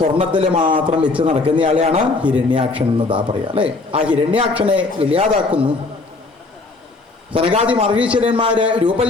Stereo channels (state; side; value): quieter; right; 3.6 dB